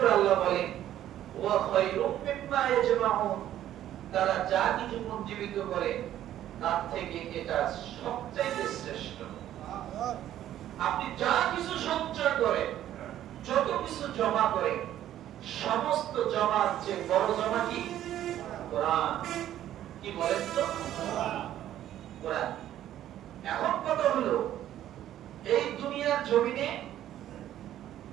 আল্লাহ বলেন ওয়া খায়রুম মিম্মা ইয়াজমাউন, তারা যা কিছু পুঞ্জীবিত করে তার থেকে এটা সবচেয়ে শ্রেষ্ঠ। আপনি যা কিছু সঞ্চয় করেন, যত কিছু জমা করেন, সমস্ত জমার চেয়ে বড় জমা কি? কোরআন। কি বলেন তো? কোরআন। এখন কথা হলো, এই দুনিয়ার জমিনে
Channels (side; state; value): left; quieter; 12.1 dB